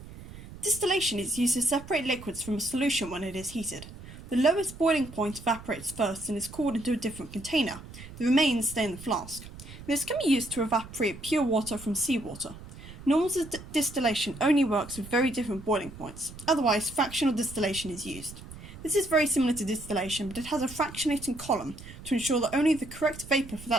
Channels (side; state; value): right; noise; rumble, 15 dB below the sound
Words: Distillation is used to separate liquids from a solution when it is heated. The lowest boiling point evaporates first and is cooled into a different container. The remains stay in the flask. This can be used to evaporate pure water from seawater. Normal distillation only works with very different boiling points. Otherwise, fractional distillation is used. This is very similar to distillation, but it has a fractionating column to ensure that only the correct vapour for